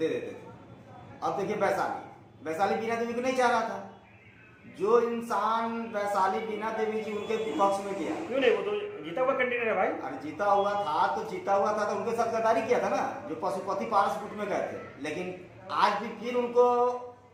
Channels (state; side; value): identical; both; correlation 1.00